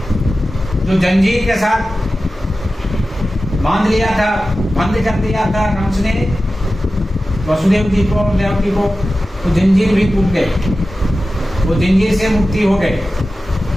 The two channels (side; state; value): both; normal; correlation 0.94